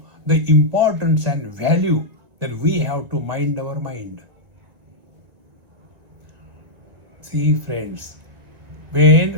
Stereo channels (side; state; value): left; late; 2.1 ms